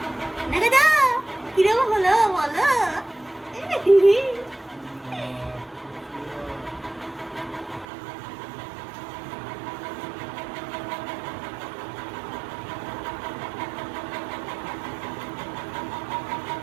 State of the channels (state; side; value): drops out; left; at 7.9 s